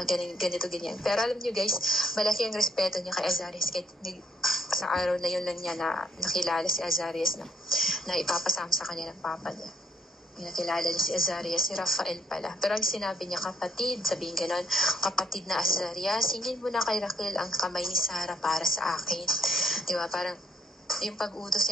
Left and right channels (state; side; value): normal; both; correlation 0.69